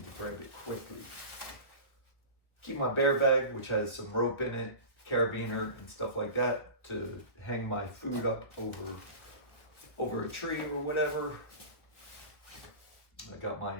to grab it quickly. Keep my bear bag, which has some rope in it, carabiner and stuff like that to hang my food up over a tree or whatever. I got my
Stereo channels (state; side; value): late; right; 1.6 ms